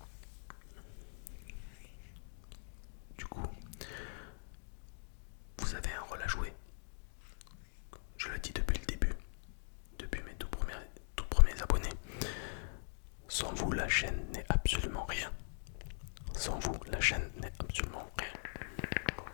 vous avez un rôle à jouer. Je le dis depuis le début, depuis mes tout premiers abonnés. Sans vous, la chaîne n'est absolument rien. Sans vous, la chaîne n'est absolument rien.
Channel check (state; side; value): silent; right; digital silence